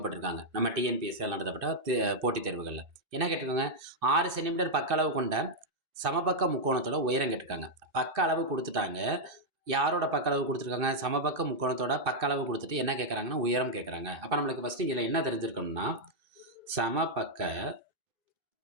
நம்ம டிஎன்பிஎஸ்சியில் நடத்தப்பட்ட போட்டித் தேர்வுகளில் என்ன கேட்டிருக்காங்க, 6 சென்டிமீட்டர் பக்க அளவு கொண்ட சமபக்க முக்கோணத்தோட உயரம் கேட்டிருக்காங்க. பக்க அளவு கொடுத்துட்டாங்க. யாரோட பக்க அளவு கொடுத்துருக்காங்க? சமபக்க முக்கோணத்தோட பக்க அளவு கொடுத்துட்டு என்ன கேட்குறாங்கன்னா உயரம் கேட்குறாங்க. அப்போ நம்மளுக்கு ஃபஸ்ட்டு இதில் என்ன தெரிஞ்சிருக்கணும்னா, சமபக்க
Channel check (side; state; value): left; late; 2.6 ms